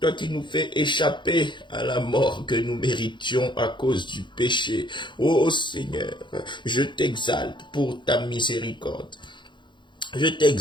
qui nous fais échapper à la mort que nous méritions à cause du péché. Oh Seigneur, je t'exalte pour ta miséricorde. Je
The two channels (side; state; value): right; late; 0.23 ms